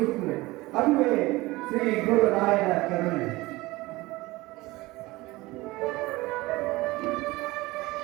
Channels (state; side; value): quieter; left; 20.6 dB